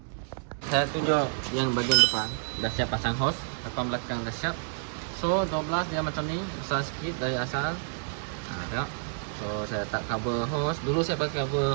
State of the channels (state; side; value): silent; left; digital silence